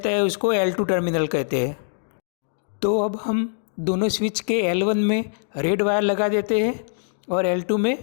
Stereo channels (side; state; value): right; silent; digital silence